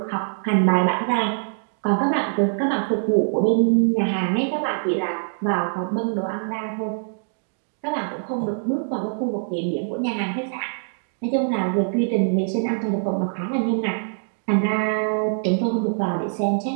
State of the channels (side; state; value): left; silent; digital silence